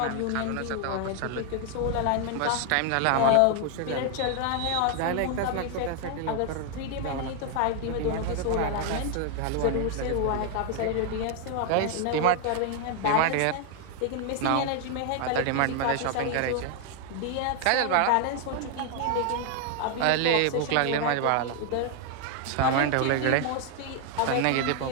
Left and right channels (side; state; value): both; different; correlation 0.00